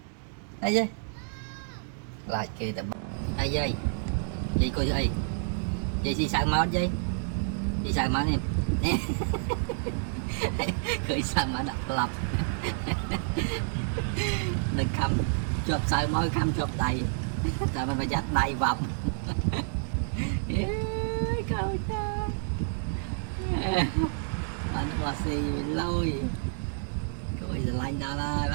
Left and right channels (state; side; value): silent; left; digital silence